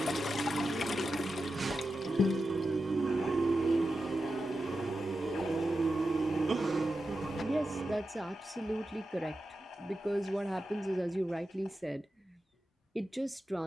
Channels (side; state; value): both; normal; correlation 0.91